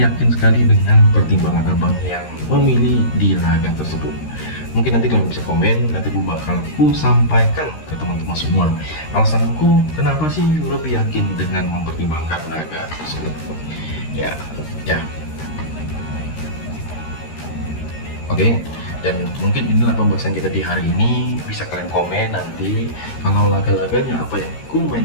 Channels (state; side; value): late; right; 13 ms